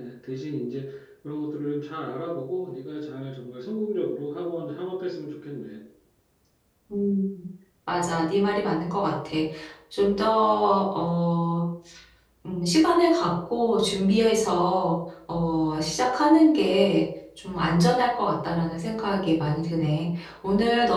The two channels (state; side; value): identical; both; correlation 1.00